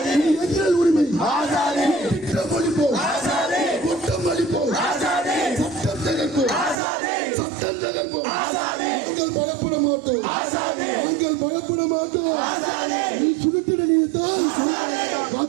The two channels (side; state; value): left; drops out; at 6.8 s